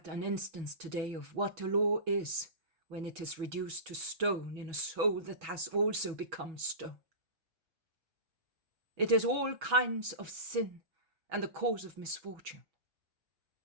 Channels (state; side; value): late; left; 6.2 ms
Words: an instance today of what a law is when it is reduced to stone in a soul that has also become stone. It is all kinds of sin and the cause of misfortune.